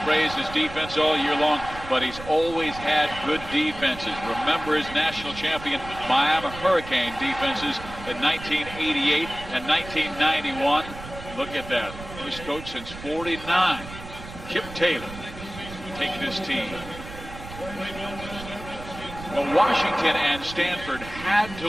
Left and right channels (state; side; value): noise; right; rumble, 13 dB below the sound